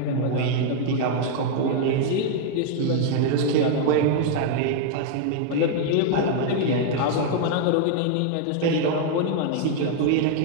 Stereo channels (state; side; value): different; both; correlation 0.00